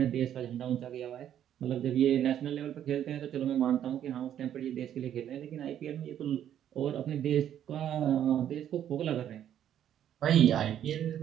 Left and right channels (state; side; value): quieter; left; 10.4 dB